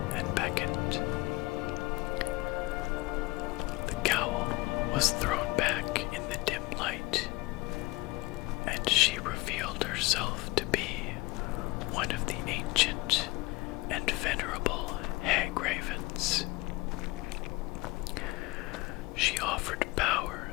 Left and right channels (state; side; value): quieter; right; 22.4 dB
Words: and beckoned. The cowl was thrown back in the dim light, and she revealed herself to be one of the ancient and venerable hag ravens. She offered power